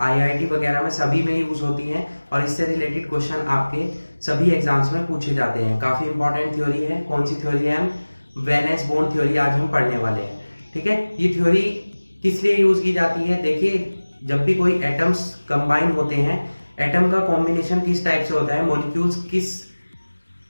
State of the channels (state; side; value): inverted; both; correlation -1.00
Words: IIT वगैरह में सभी में यूज होती हैं और इससे रिलेटेड क्वेश्चन आपके सभी एग्जाम्स में पूछे जाते हैं। काफ़ी इंपॉर्टेंट थ्योरी है। कौन सी थ्योरी है? वेलेंस बॉन्ड थ्योरी आज हम पढ़ने वाले हैं। ठीक है, ये थ्योरी किस लिए यूज की जाती है? देखिए, जब भी कोई एटम्स कंबाइन होते हैं, एटम का कॉम्बिनेशन किस टाइप से होता है, मॉलिक्यूल्स किस